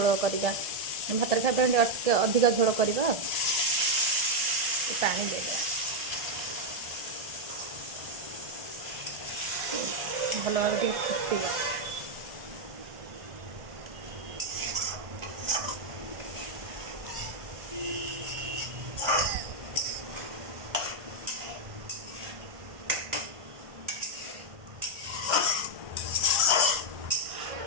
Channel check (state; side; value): late; left; 1.5 ms